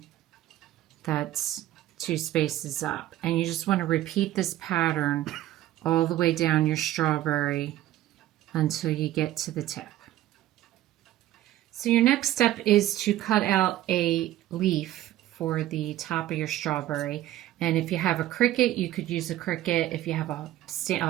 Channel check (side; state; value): left; quieter; 14.2 dB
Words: that's 2 spaces up. And you just want to repeat this pattern all the way down your strawberry until you get to the tip. So your next step is to cut out a leaf for the top of your strawberry. And if you have a Cricut, you could use a Cricut. If you have